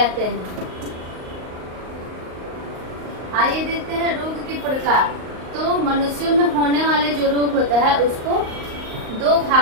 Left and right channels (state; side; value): late; left; 38 ms